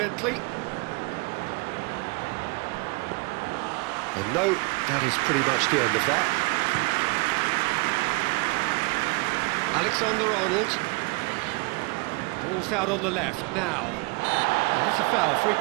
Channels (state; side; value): quieter; left; 27.8 dB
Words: And no, that is pretty much the end of that. Alexander-Arnold. Ball's out on the left now. That's a foul, free